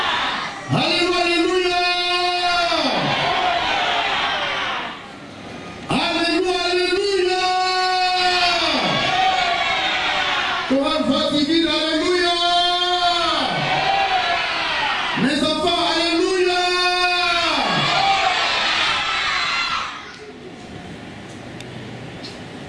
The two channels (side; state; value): both; identical; correlation 1.00